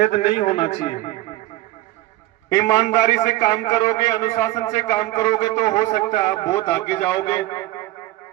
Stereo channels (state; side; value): quieter; left; 16.9 dB